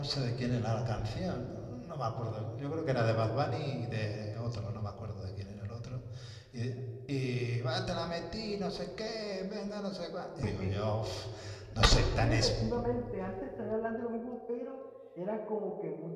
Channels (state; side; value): identical; both; correlation 1.00